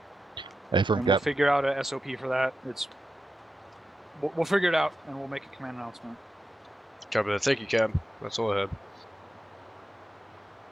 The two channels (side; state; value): both; normal; correlation 0.90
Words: And we'll figure out a SOP for that. We'll figure it out and we'll make a command announcement. Copy that. Thank you, Cab. That's all I had.